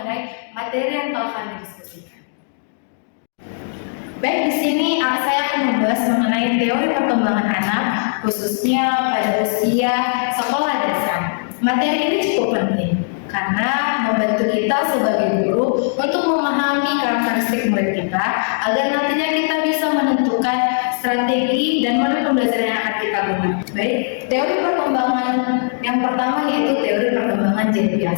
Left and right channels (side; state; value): right; silent; digital silence